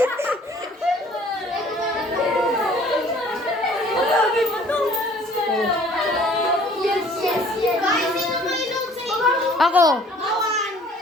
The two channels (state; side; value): normal; both; correlation 0.54